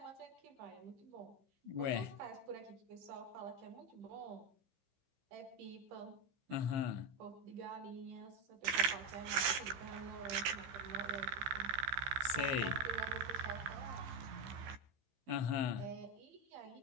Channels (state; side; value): late; left; 15 ms